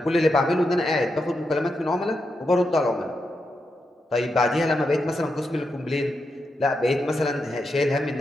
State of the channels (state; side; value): normal; both; correlation 0.85